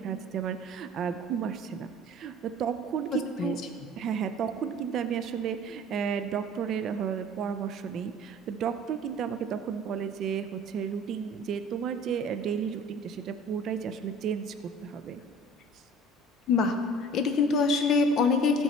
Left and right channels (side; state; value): both; normal; correlation 0.46